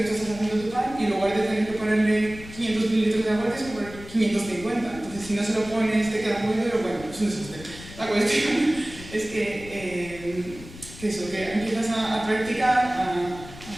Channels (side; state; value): left; noise; rumble, 16 dB below the sound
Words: tú estás haciendo tu pan y en lugar de tener que ponerle 500 mililitros de agua, tienes que poner 550. Entonces, si no se lo pones, te queda muy duro, bueno, es un desastre. La cuestión es que empiezas a practicar, a